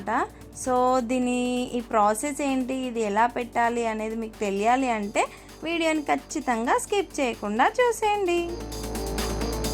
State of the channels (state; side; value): identical; both; correlation 1.00